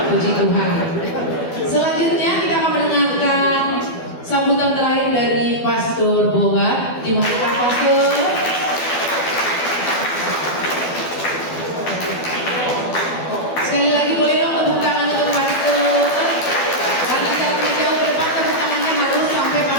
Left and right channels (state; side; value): late; right; 12 ms